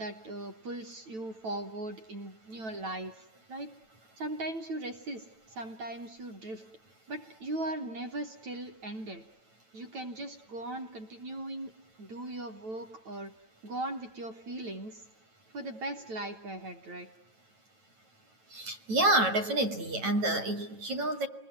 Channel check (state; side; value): late; left; 9.1 ms